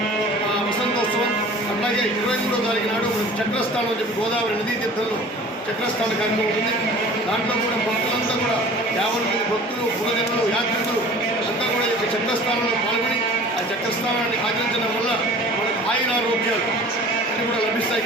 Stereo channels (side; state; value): both; normal; correlation 0.45